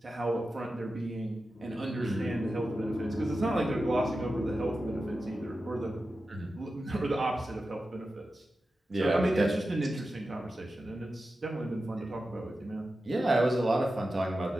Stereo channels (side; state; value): both; normal; correlation 0.92